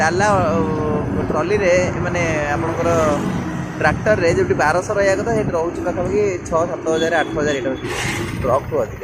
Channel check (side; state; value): both; identical; correlation 1.00